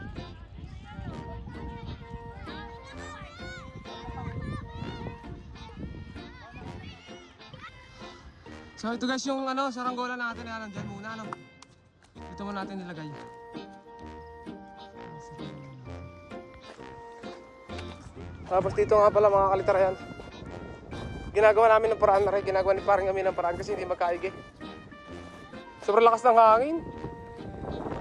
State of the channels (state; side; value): identical; both; correlation 1.00